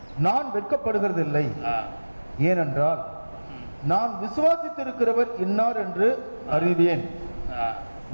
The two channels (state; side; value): inverted; both; correlation -1.00